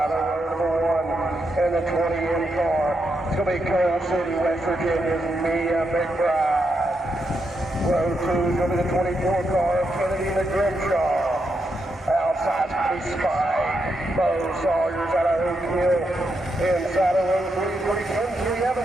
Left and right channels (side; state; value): both; normal; correlation 0.83